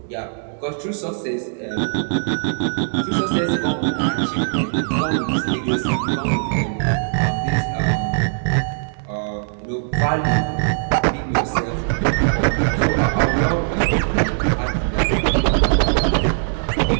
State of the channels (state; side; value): silent; left; digital silence